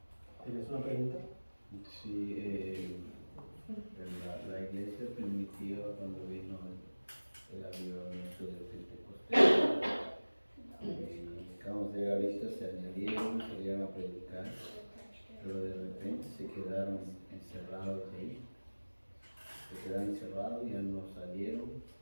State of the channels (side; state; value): both; inverted; correlation -1.00